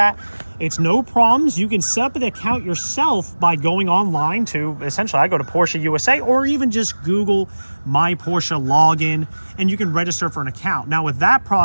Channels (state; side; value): inverted; both; correlation -1.00